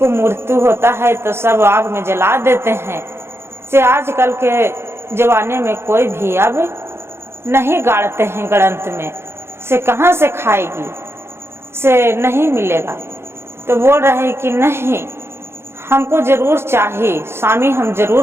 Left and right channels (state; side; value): late; left; 0.12 ms